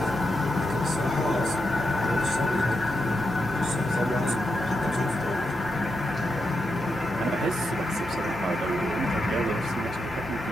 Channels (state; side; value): noise; right; hum, 14 dB below the sound